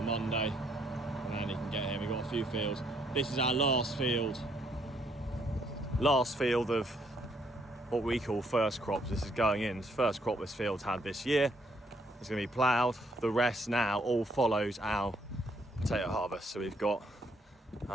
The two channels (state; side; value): normal; both; correlation 0.70